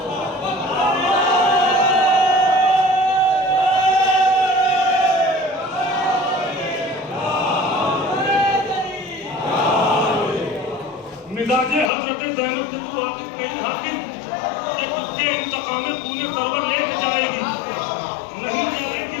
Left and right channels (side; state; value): right; drops out; at 11.9 s